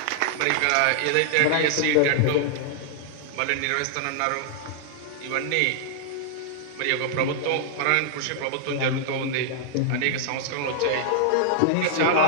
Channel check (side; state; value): both; different; correlation -0.01